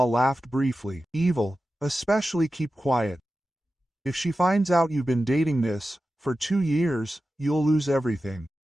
laughed briefly. Evil, especially keep quiet. If she finds out you've been dating this, for 2 years, you'll lose everything.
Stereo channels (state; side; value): normal; both; correlation 0.93